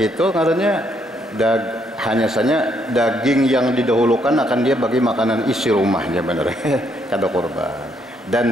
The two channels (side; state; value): both; normal; correlation 0.72